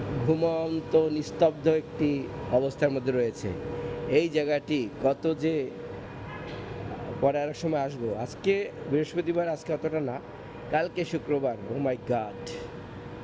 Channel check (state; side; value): identical; both; correlation 1.00